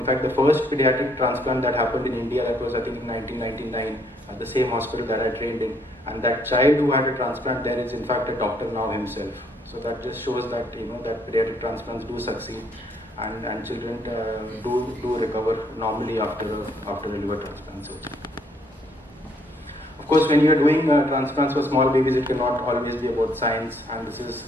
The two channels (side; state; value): both; normal; correlation 0.67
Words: fact, the first pediatric transplant that happened in India, that was I think in 1999 at the same hospital that I trained in, and that child who had a transplant there is in fact a doctor now himself. So that just shows that that pediatric transplants do succeed, and children do recover normally after a liver transplant surgery. Of course, when you are doing transplants for small babies, it cannot always be about science, and this is